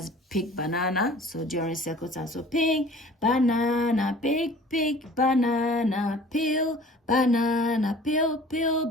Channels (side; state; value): both; normal; correlation 0.48